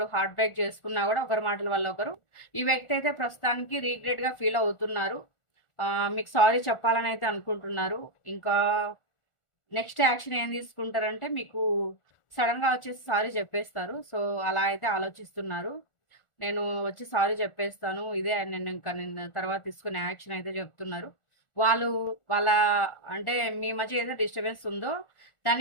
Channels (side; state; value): right; late; 1.4 ms